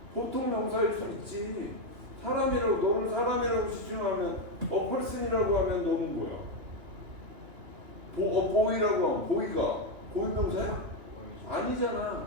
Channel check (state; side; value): late; left; 3.0 ms